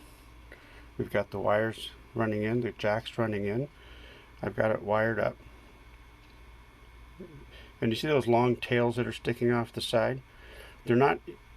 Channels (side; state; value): both; identical; correlation 1.00